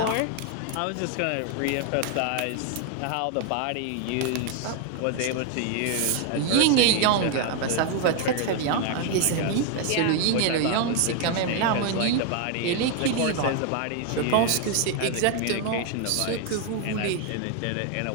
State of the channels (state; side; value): different; both; correlation 0.01